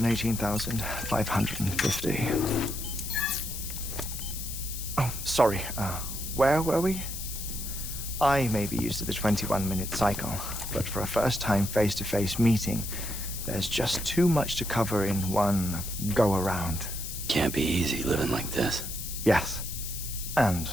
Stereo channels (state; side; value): noise; left; hiss, 7 dB below the sound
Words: Oh, sorry. Where were we? I may be used to the 21-minute cycle, but for a first-time face-to-face meeting, there's just too much to cover in one go-around. Can't be easy living like this. Yes. And